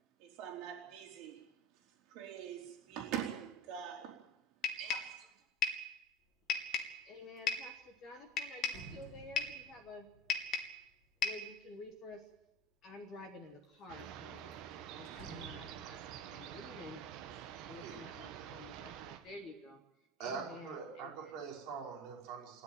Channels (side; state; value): both; normal; correlation 0.32